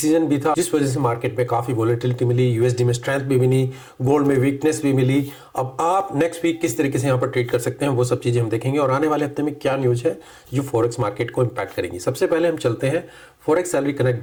भी था, जिस वजह से मार्केट में काफी वोलेटिलिटी मिली, यूएसडी में स्ट्रेंथ भी मिली, गोल्ड में वीकनेस भी मिली। अब आप नेक्स्ट वीक किस तरीके से यहाँ पर ट्रेड कर सकते हैं वो सब चीजें हम देखेंगे, और आने वाले हफ्ते में क्या न्यूज है जो फॉरेक्स मार्केट को इम्पैक्ट करेंगी। सबसे पहले हम चलते हैं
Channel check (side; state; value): both; identical; correlation 1.00